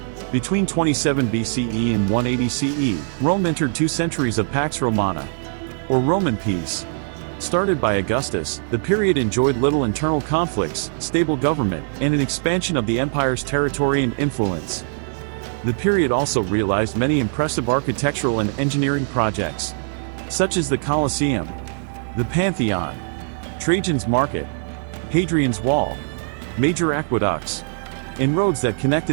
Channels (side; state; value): left; silent; 64 dB below the other